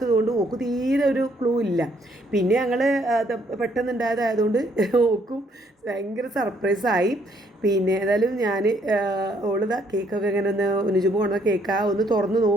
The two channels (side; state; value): both; normal; correlation 0.68